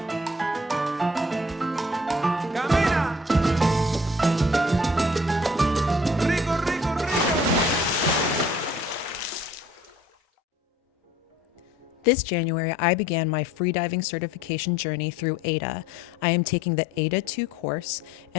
Camina. Rico, rico, rico. This January, I began my freediving certification journey through AIDA. I am taking the AIDA 2 course,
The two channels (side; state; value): both; normal; correlation 0.55